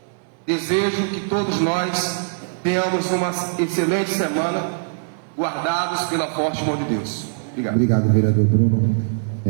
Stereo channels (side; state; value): left; silent; digital silence